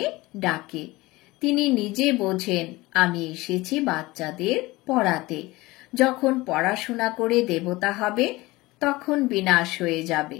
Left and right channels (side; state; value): right; quieter; 20.5 dB